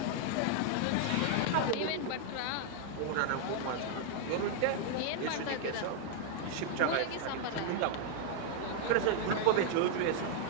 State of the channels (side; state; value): both; different; correlation 0.00